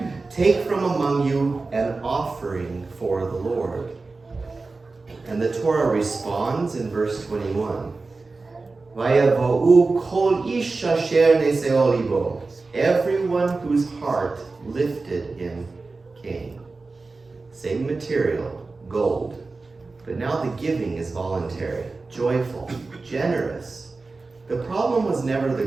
take from among you an offering for the Lord. And the Torah responds in verse 21, "Vayavo'u kol ish asher neseo libo," everyone whose heart lifted him came. Same material, gold. But now the giving is voluntary, joyful, generous. The problem was never the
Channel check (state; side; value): quieter; left; 3.8 dB